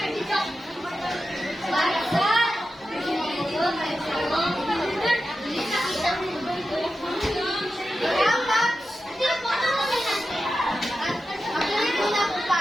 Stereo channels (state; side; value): normal; both; correlation 0.91